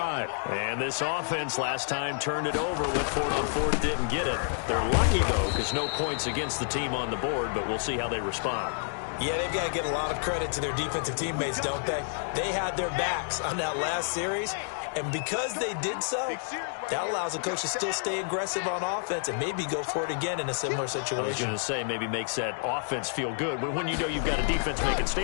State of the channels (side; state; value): right; silent; digital silence